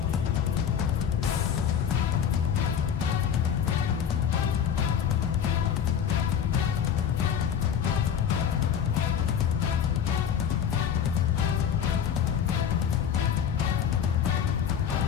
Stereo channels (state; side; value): quieter; right; 8.3 dB